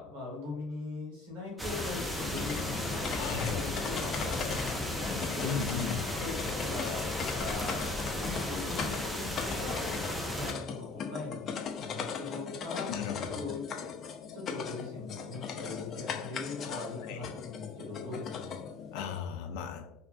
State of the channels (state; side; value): quieter; right; 3.3 dB